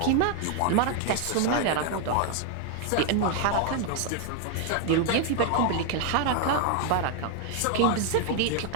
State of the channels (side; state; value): both; different; correlation 0.00